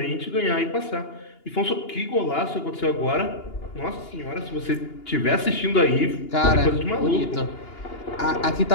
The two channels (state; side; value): late; right; 2.9 ms